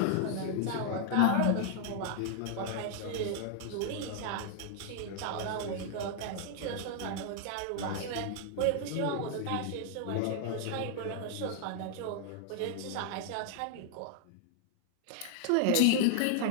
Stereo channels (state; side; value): different; both; correlation 0.00